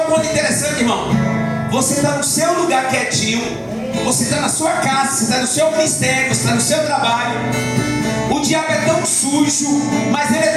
ponto interessante, irmão. Você está no seu lugar quietinho, você está na sua casa, você está no seu ministério, você está no seu trabalho. O diabo é tão sujo, mas ele é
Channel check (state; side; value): identical; both; correlation 1.00